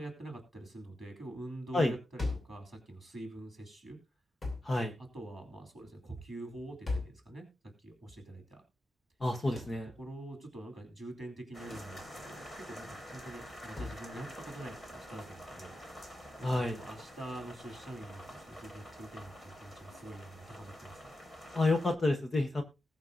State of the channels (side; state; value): both; normal; correlation 0.90